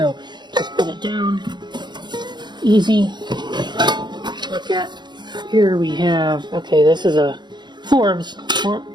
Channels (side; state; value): left; late; 0.21 ms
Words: just put it down. Easy. Look at. Here we have, okay, this is a Forbes